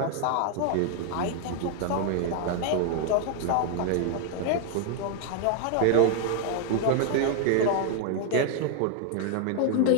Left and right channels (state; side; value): different; both; correlation 0.00